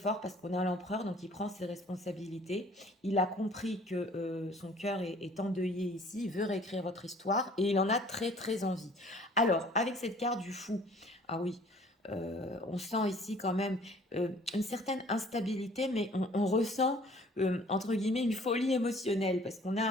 parce qu'on a l'empereur, donc il prend ses responsabilités. Il a compris que son cœur est endeuillé ici, il veut réécrire votre histoire et il en a très très envie. Alors, avec cette carte du fou, ah oui, on sent ici quand même une certaine instabilité, mais on ressent entre guillemets une folie émotionnelle parce qu'on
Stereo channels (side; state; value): both; normal; correlation 0.53